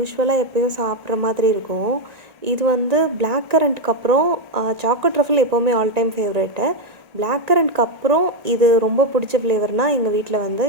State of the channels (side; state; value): left; late; 1.9 ms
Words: எப்போயும் சாப்பிட்ற மாதிரி இருக்கும். இது வந்து பிளாக் கரண்ட்க்கு அப்புறம் சாக்லேட் ட்ரஃபிள் எப்போவுமே ஆல் டைம் ஃபேவரேட்டு. பிளாக் கரண்ட்க்கு அப்புறம் இது ரொம்ப பிடிச்ச ஃப்ளேவர்னால் எங்கள் வீட்டில் வந்து